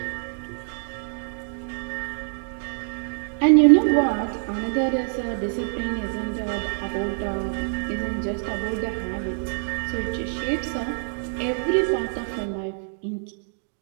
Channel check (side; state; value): left; silent; digital silence